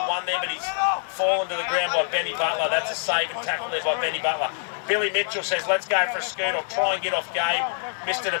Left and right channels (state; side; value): silent; right; digital silence